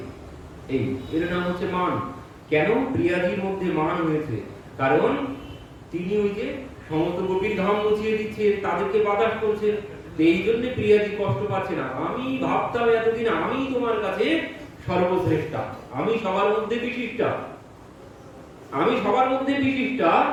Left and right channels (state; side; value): identical; both; correlation 1.00